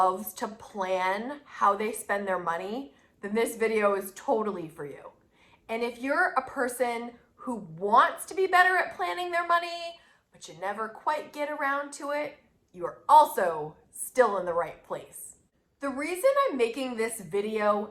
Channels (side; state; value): both; identical; correlation 1.00